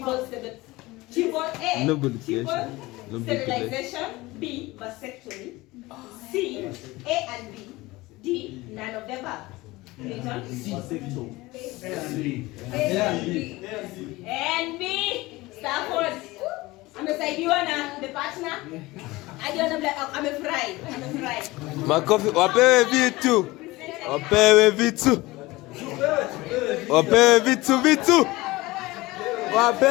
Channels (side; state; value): right; quieter; 20.4 dB